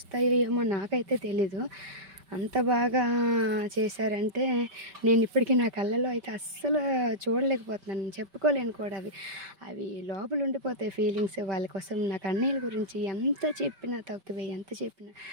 ఏమో నాకైతే తెలీదు. అంత బాగా చేశారంటే నేను ఇప్పటికీ నా కళ్ళలో అయితే అస్సలు చూడలేకపోతున్నాను, చెప్పుకోలేను కూడా. అవి లోపల ఉండిపోతాయి ఫీలింగ్స్. వాళ్ళ కోసం నాకు అన్నయ్యల గురించి ఎంత చెప్పినా తక్కువే, ఎంత చెప్పినా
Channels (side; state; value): left; late; 5.2 ms